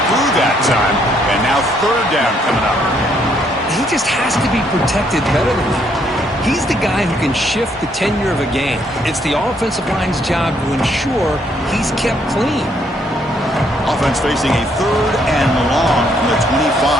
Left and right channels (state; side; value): normal; both; correlation 0.70